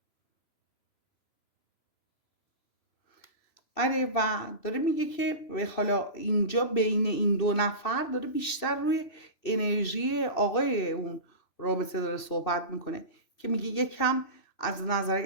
آره و داره میگه که حالا اینجا بین این دو نفر داره بیشتر روی انرژی آقای اون رابطه داره صحبت میکنه که میگه یکم از نظر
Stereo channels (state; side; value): late; right; 3.0 ms